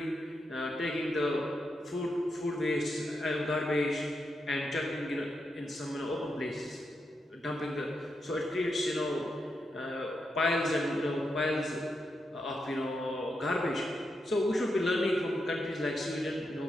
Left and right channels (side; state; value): both; normal; correlation 0.84